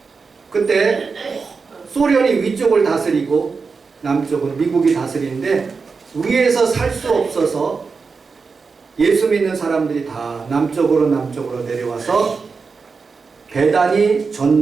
그때 소련이 위쪽을 다스리고 남쪽은 미국이 다스리는데 위에서 살 수 없어서 예수 믿는 사람들이 다 남쪽으로 내려와서 배단위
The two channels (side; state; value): left; quieter; 4.9 dB